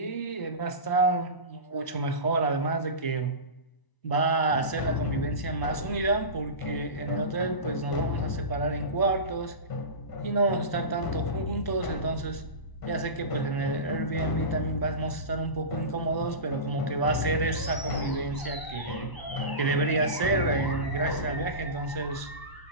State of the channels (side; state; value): right; late; 1.0 ms